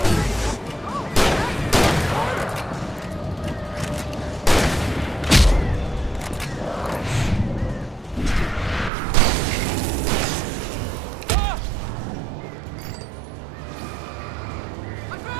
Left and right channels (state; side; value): drops out; left; at 8.9 s